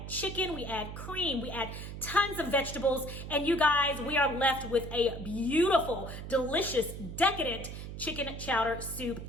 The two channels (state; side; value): noise; right; hum, 9 dB below the sound